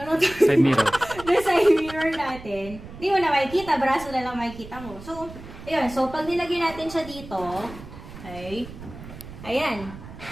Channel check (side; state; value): right; noise; rumble, 15 dB below the sound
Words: side mirror. The side mirror natin, hindi mo na makikita, braso na lang makikita mo. So, ayun. So, pag nilagay natin siya dito, okay, ayan,